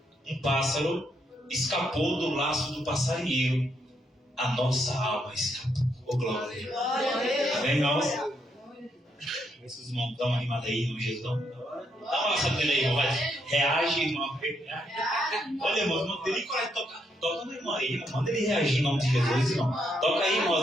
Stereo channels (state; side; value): normal; both; correlation 0.77